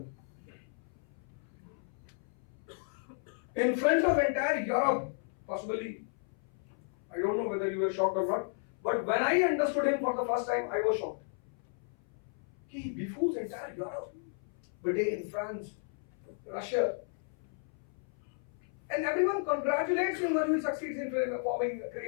In front of entire Europe, possibly, I don't know whether you were shocked or not, but when I understood him for the first time, I was shocked. He befools entire Europe, Britain, France, Russia, and everyone congratulates him when he succeeds in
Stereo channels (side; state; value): right; silent; 55 dB below the other